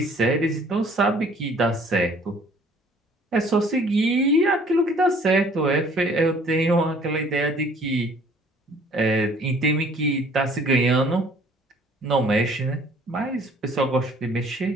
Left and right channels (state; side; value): normal; both; correlation 0.55